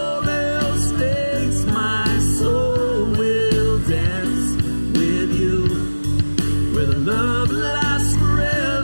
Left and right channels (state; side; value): inverted; both; correlation -1.00